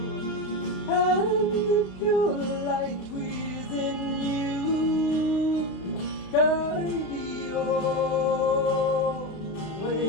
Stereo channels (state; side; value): late; right; 32 ms